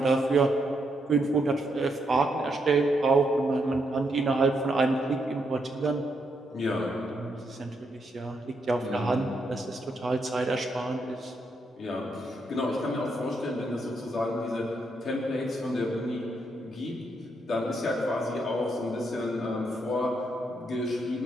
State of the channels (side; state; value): both; normal; correlation 0.78